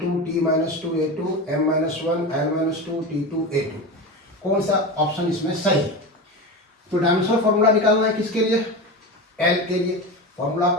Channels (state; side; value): normal; both; correlation 0.24